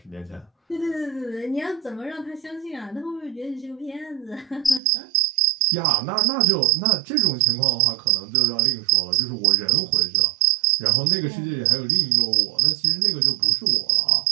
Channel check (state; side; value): drops out; left; at 4.8 s